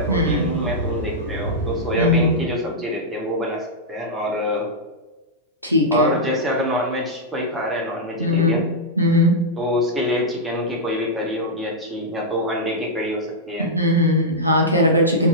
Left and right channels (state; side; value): normal; both; correlation -0.08